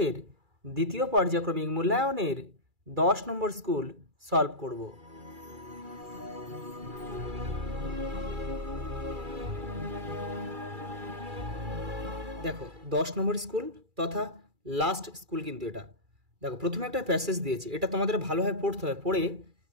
দ্বিতীয় পর্যায়ক্রমিক মূল্যায়নের 10 নম্বর স্কুল সলভ করব। দেখো 10 নম্বর স্কুল তথা লাস্ট স্কুল কিন্তু এটা। দেখো প্রথমে একটা প্যাসেজ দিয়েছে, এটা তোমাদের ভালোভাবে পড়তে হবে, পড়ে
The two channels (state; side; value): late; left; 2.3 ms